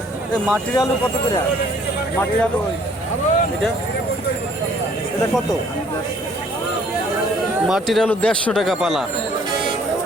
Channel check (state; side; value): normal; both; correlation 0.59